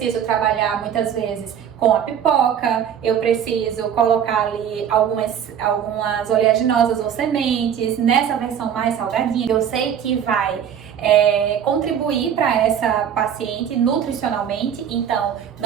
trabalhar muitas vezes com a pipoca, eu preciso colocar ali algumas oleaginosas ou sementes, nessa versão mais salgadinha. Eu sei que vai contribuir para essa paciente nutricionalmente, então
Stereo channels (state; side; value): quieter; left; 8.8 dB